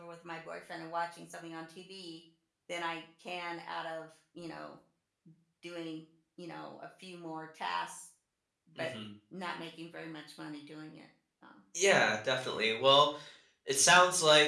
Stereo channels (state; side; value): identical; both; correlation 1.00